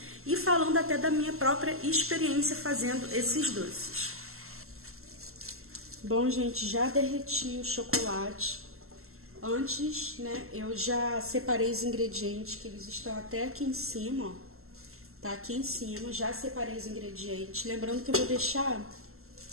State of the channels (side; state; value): left; late; 0.62 ms